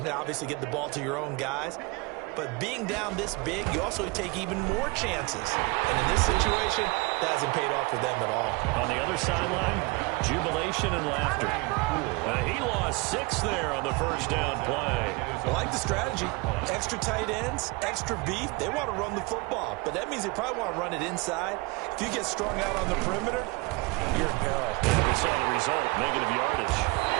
obviously get the ball to your own guys. But being down this big, you also take even more chances. And in this situation, that hasn't paid off for them at all. On the other sideline, jubilation and laughter. He lost 6 there on the first down play. I like the strategy. Extra tight ends, extra beef. They want to run the football, but that means they probably want to run it inside. If you get strung out on the perimeter, you're in peril. We saw the result, negative yardage.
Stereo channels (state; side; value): quieter; left; 26.4 dB